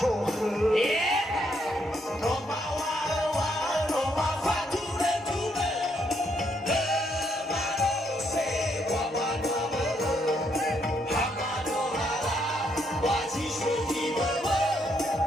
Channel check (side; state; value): both; normal; correlation 0.74